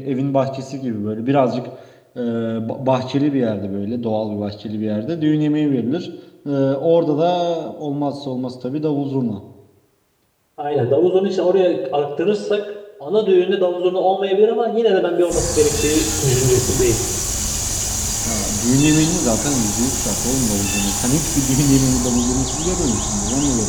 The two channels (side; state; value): both; identical; correlation 1.00